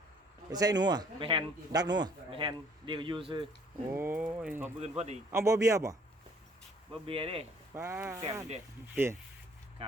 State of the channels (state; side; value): normal; both; correlation 0.59